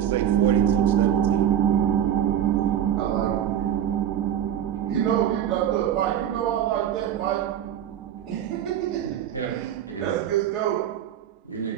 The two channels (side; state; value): left; quieter; 10.2 dB